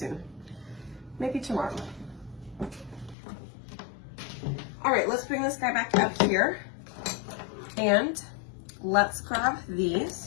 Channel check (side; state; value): right; drops out; at 3.2 s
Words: Maybe tomorrow. All right, let's bring this guy back up here and let's grab